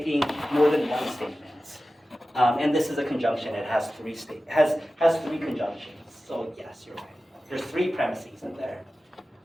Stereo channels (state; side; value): normal; both; correlation 0.95